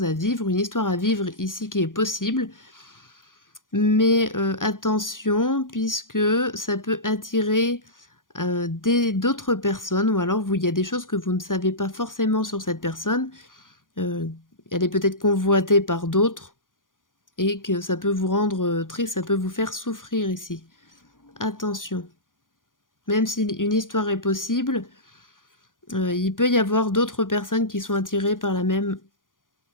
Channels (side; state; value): right; late; 0.89 ms